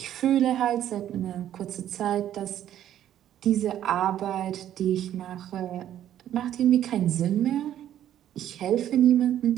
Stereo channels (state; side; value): quieter; left; 11.3 dB